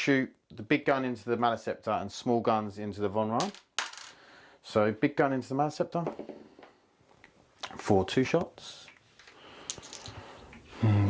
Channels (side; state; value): both; identical; correlation 1.00